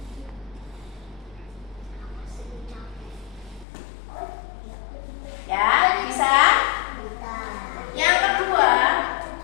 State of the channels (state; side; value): drops out; right; at 3.7 s